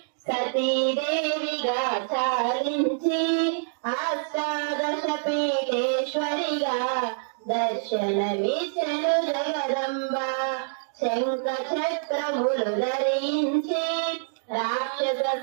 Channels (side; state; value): left; silent; digital silence